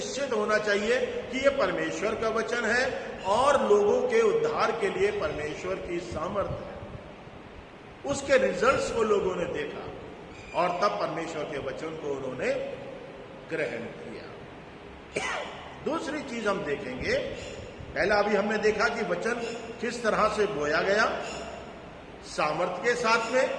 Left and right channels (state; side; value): identical; both; correlation 1.00